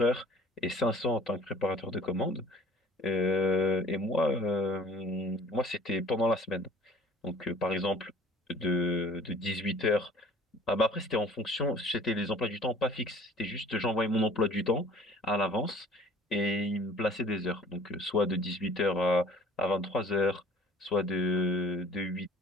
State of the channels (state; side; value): normal; both; correlation 0.50